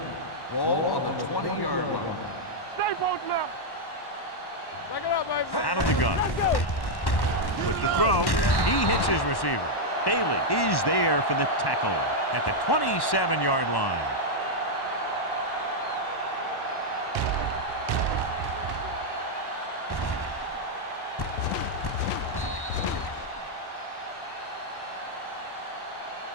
Ball on the 20-yard line. Stay posted up. Back it up, baby. Out of the gun. With the throw, he hits his receiver. Bailey is there for the tackle at the 27-yard line.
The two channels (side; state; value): right; late; 1.1 ms